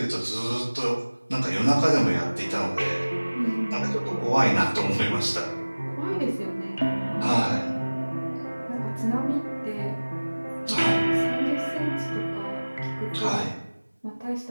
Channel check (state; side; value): inverted; both; correlation -1.00